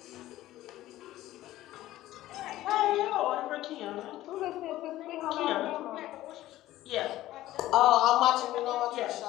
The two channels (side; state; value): right; quieter; 15.2 dB